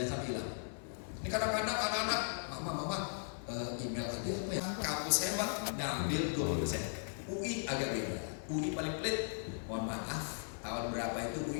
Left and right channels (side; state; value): right; silent; digital silence